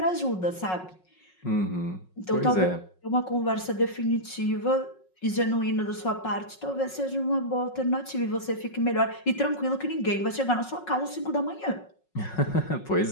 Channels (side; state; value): right; late; 5.5 ms